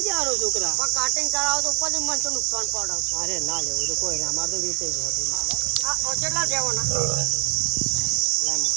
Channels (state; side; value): quieter; left; 29.3 dB